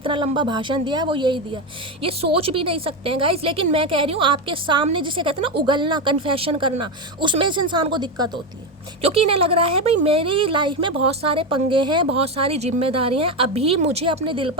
लंबा भाषण दिया है, वो यही दिया, ये सोच भी नहीं सकते हैं गाइस। लेकिन मैं कह रही हूँ आपके सामने जिसे कहते हैं ना उगलना, कन्फेशन करना, उसमें इस इंसान को दिक्कत होती है, क्योंकि इन्हें लग रहा है भाई मेरी लाइफ में बहुत सारे पंगे हैं, बहुत सारी जिम्मेदारियाँ हैं, अभी मुझे अपने दिल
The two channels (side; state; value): both; normal; correlation 0.13